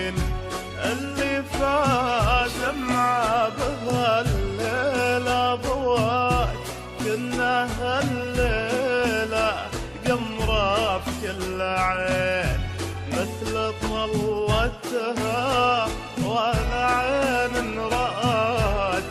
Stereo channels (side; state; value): both; identical; correlation 1.00